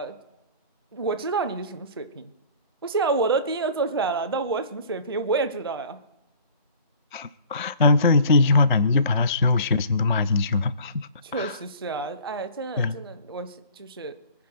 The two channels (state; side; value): inverted; both; correlation -0.47